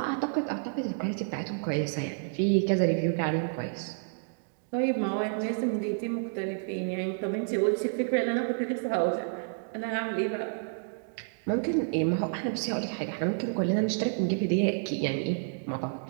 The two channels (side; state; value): left; silent; digital silence